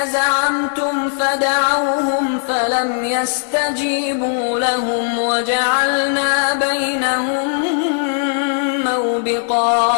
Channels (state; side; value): silent; right; 68 dB below the other